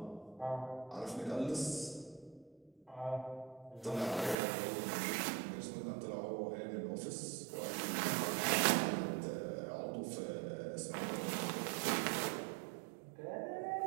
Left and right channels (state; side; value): drops out; left; at 4.4 s